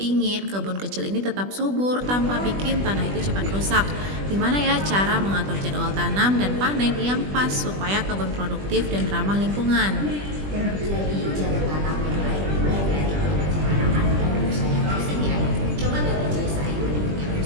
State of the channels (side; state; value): left; late; 20 ms